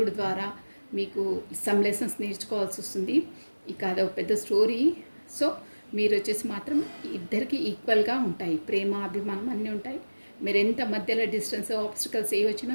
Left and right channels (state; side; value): inverted; both; correlation -1.00